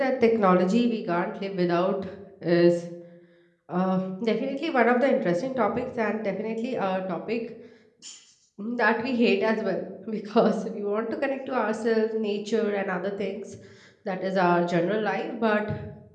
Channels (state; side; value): identical; both; correlation 1.00